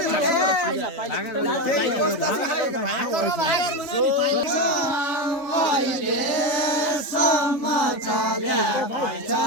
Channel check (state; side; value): late; right; 3.4 ms